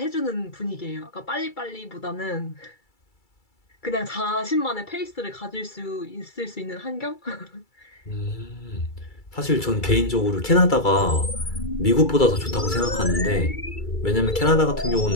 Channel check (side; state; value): right; late; 2.3 ms